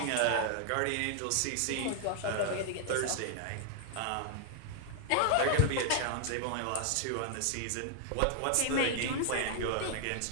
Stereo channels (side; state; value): both; different; correlation 0.00